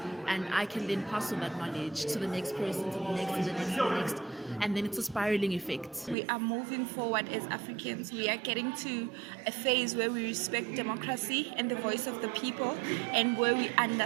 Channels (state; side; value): drops out; left; at 6.2 s